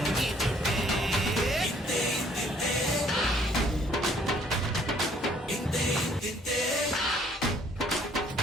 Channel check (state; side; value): normal; both; correlation 0.62